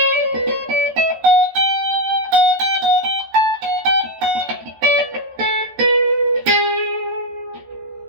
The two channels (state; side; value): late; left; 13 ms